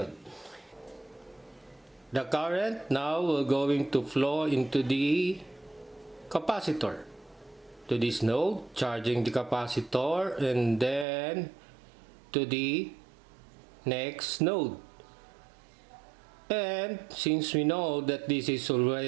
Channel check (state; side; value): drops out; left; at 11.1 s